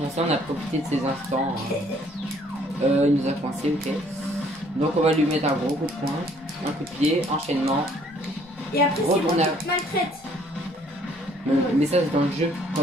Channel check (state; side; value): normal; both; correlation 0.61